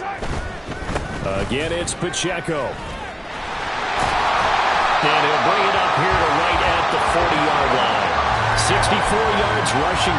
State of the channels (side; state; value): both; identical; correlation 1.00